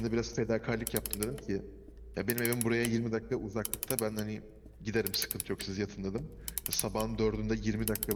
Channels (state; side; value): identical; both; correlation 1.00